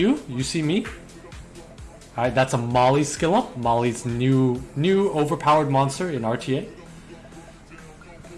You see me. Alright, that's a Molly Skilla. Molly's new overpowered monster in RTA.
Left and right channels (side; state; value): both; identical; correlation 1.00